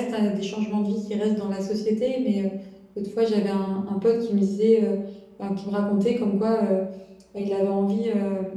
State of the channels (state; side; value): identical; both; correlation 1.00